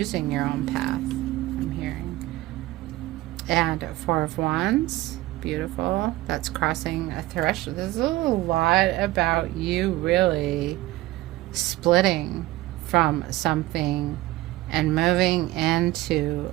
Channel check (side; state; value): left; quieter; 17.7 dB